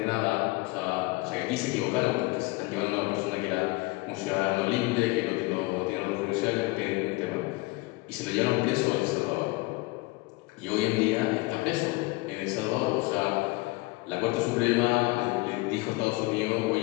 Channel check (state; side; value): quieter; right; 23.2 dB